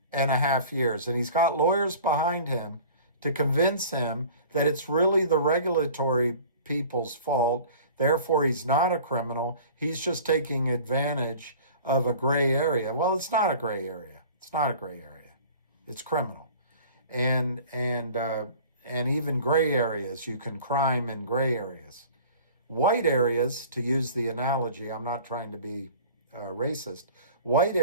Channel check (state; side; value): inverted; both; correlation -0.44